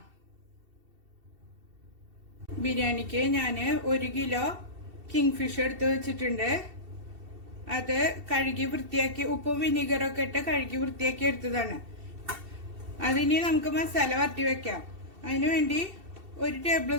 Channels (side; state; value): left; late; 2.7 ms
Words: ബിരിയാണിക്ക് ഞാൻ 1 കിലോ കിങ് ഫിഷ് എടുത്ത് വെച്ചിട്ടുണ്ട്. അത് കഴുകി വൃത്തിയാക്കി ഉപ്പും വിനീഗറൊക്കെ ഇട്ട് കഴുകി വൃത്തിയാക്കി എടുത്തതാണ്. അതിനി നമുക്ക് മസാല വരട്ടി വെക്കാം. അതിനുവേണ്ടി 1 ടേബിൾ